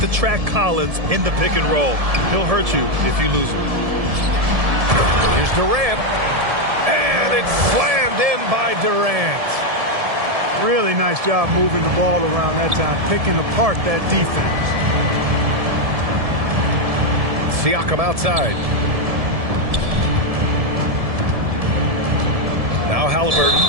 track Collins in the pick and roll. He'll hurt you if you lose him. Here's Durant. And it's slammed in by Durant. Really nice job moving the ball around that time, picking apart that defense. Siakam outside. Now Halliburton.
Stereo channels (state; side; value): late; left; 1.7 ms